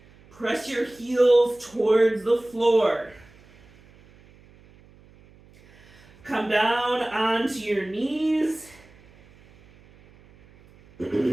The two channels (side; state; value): right; noise; hum, 27 dB below the sound